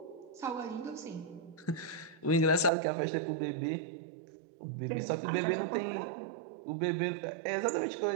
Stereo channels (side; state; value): left; drops out; at 2.7 s